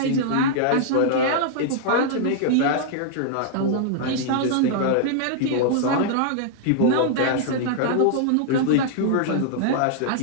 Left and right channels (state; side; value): different; both; correlation -0.01